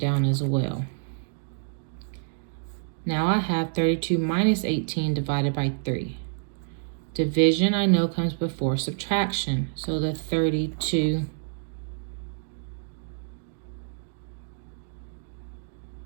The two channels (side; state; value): left; silent; 60 dB below the other